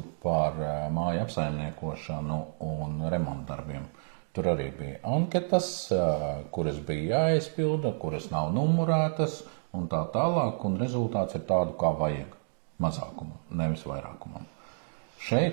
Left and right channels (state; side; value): silent; left; digital silence